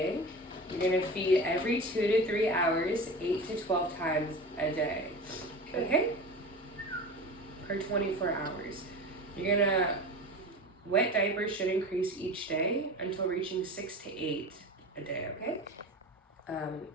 you're going to feed every 2 to 3 hours, 8 to 12 times a day. Okay? For 24 hours. You're going to, wet diapers should increase each day until reaching 6 to 8 a day, okay?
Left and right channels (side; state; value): both; normal; correlation 0.31